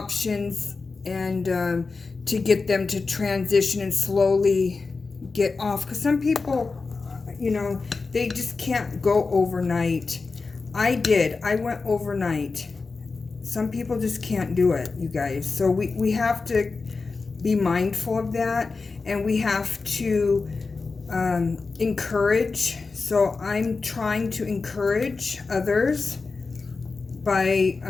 and to get them to transition and slowly get off. Because some people, you know, they just can't go overnight. I did. I went overnight. Some people just can't do it, you guys. So we have to be mindful of that, and we have to encourage. So I'm trying to encourage others by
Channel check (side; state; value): right; quieter; 4.2 dB